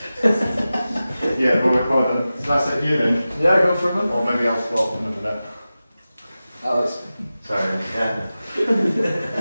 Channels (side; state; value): both; inverted; correlation -0.95